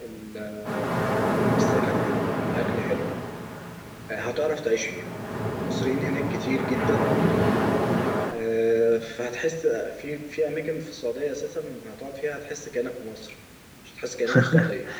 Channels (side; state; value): both; identical; correlation 1.00